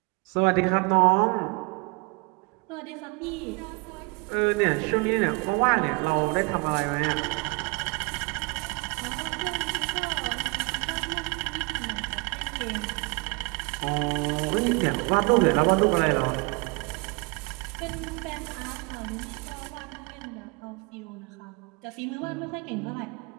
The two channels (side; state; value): left; quieter; 29.1 dB